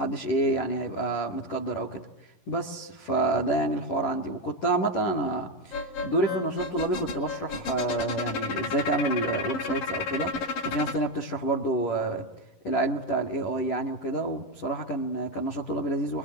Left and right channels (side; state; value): right; late; 11 ms